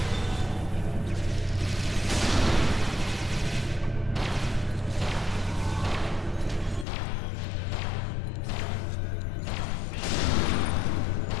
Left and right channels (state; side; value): drops out; right; at 6.9 s